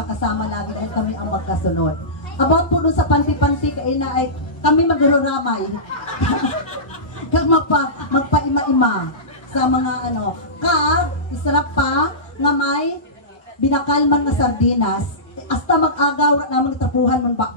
lagi dahil kami ang magkasunod. About po doon sa panti-panti, kaina ay kami magruramay. Kag magpaima-ima sa mga ano. Kag, isarap pa nga may binakalman na sardinas. Hasta mag-agaw na tapuhan ng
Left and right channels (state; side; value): normal; both; correlation -0.19